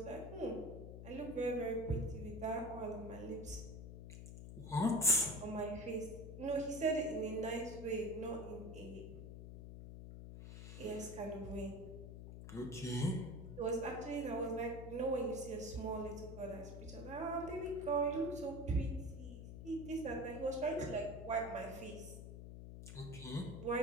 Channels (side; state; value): left; noise; hum, 9 dB below the sound